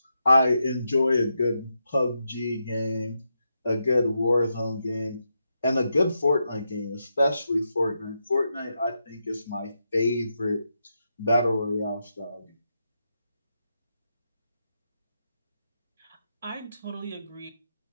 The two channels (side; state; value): both; inverted; correlation -0.85